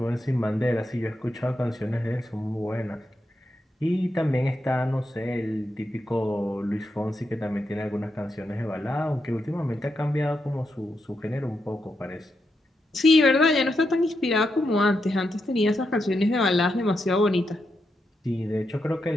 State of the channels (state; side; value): normal; both; correlation 0.84